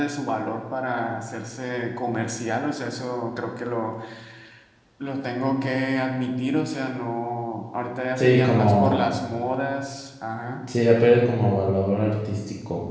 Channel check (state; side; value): identical; both; correlation 1.00